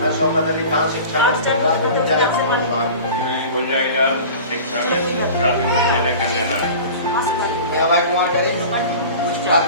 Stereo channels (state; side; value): inverted; both; correlation -0.38